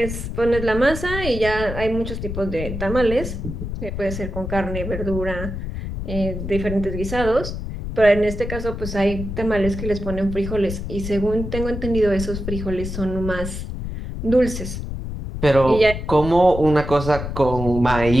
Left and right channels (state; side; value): noise; left; rumble, 6 dB below the sound